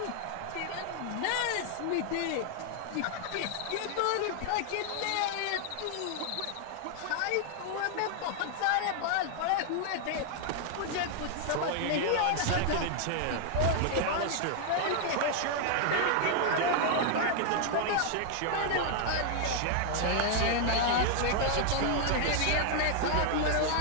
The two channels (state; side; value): different; both; correlation 0.00